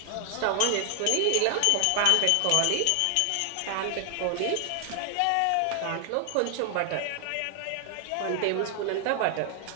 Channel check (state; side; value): different; both; correlation 0.00